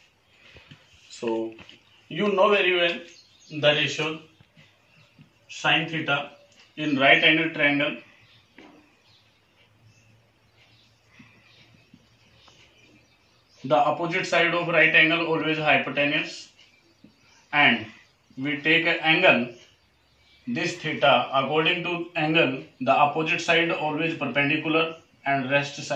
So, you know very well the ratio sine theta in right angle triangle. The opposite side of right angle always hypotenuse, and we take an angle this theta according to angle the opposite side always perpendicular and rest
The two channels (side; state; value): both; identical; correlation 1.00